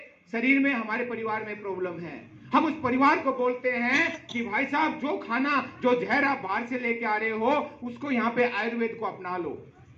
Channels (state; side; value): identical; both; correlation 1.00